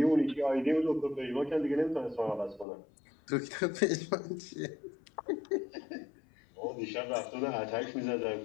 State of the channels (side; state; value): right; drops out; at 2.7 s